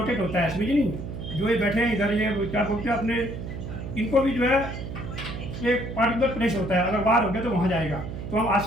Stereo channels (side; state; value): right; noise; hum, 8 dB below the sound